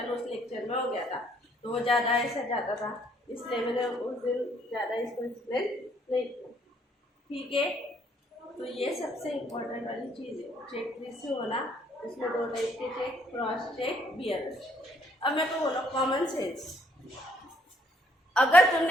उस लेक्चर में हो गया था, तो वो ज़्यादा ऐसा जाता था, इसलिए मैंने उस दिन ज़्यादा इसको एक्सप्लेन नहीं किया, ठीक है। तो ये सबसे इम्पोर्टेंट वाली चीज़ है, चेक रिसीव होना, उसमें दो टाइप के चेक, क्रॉस चेक, बियरर। अब मैं तो बोलो कॉमन सेंस, अगर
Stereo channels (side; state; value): both; normal; correlation 0.67